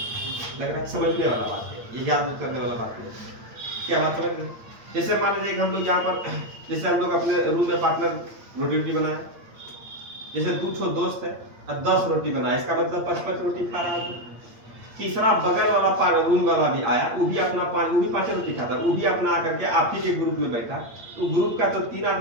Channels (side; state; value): left; late; 8.7 ms